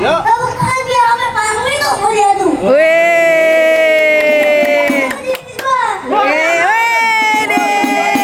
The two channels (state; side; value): identical; both; correlation 1.00